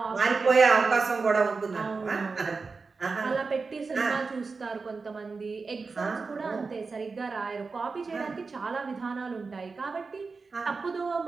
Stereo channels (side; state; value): left; quieter; 4.4 dB